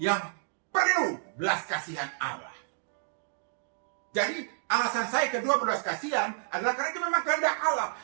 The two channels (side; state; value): left; silent; digital silence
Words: yang perlu belas kasihan Allah. Jadi alasan saya kedua berbelas kasihan adalah karena itu memang kehendak Allah.